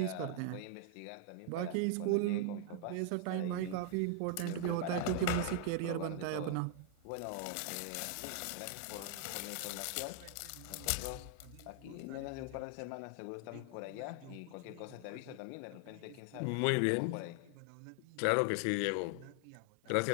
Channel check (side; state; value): both; different; correlation 0.00